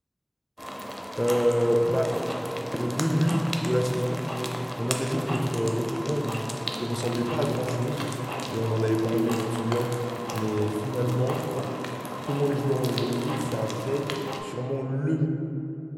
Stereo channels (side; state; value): both; identical; correlation 1.00